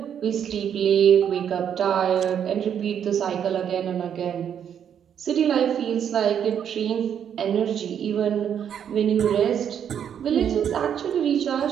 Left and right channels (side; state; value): left; quieter; 8.7 dB